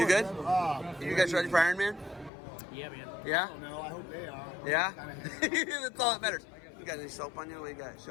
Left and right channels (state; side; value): drops out; right; at 2.3 s